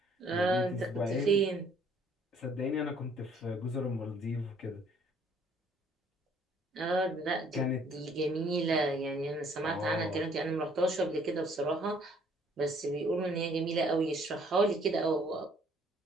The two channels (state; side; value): normal; both; correlation 0.61